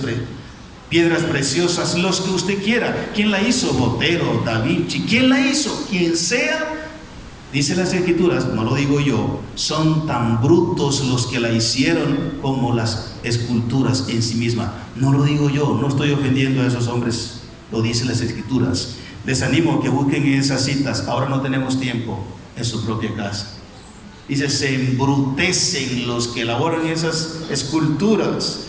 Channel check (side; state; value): both; identical; correlation 1.00